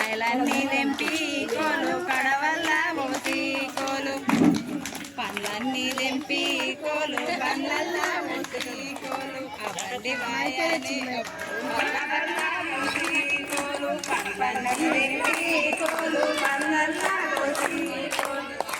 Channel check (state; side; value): identical; both; correlation 1.00